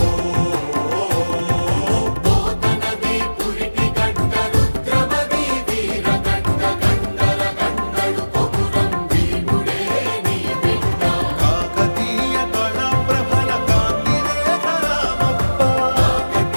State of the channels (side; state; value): both; inverted; correlation -1.00